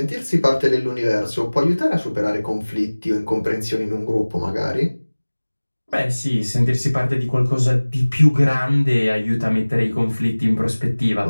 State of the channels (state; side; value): inverted; both; correlation -1.00